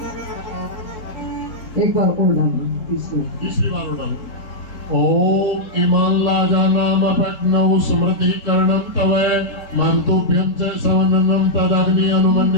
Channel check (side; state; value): right; late; 3.7 ms